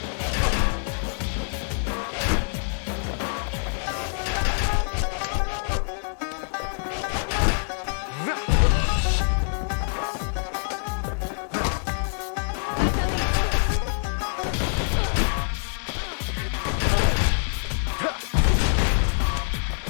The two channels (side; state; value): right; silent; 61 dB below the other